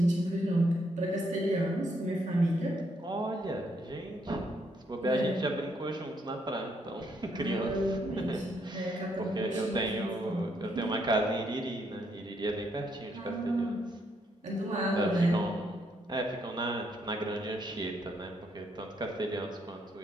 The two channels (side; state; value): both; normal; correlation 0.74